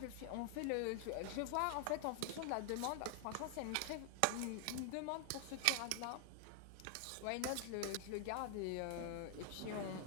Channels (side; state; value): both; different; correlation 0.00